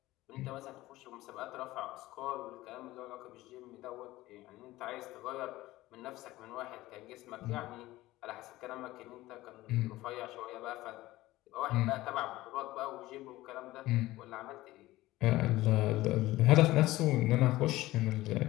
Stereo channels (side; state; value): right; quieter; 17.4 dB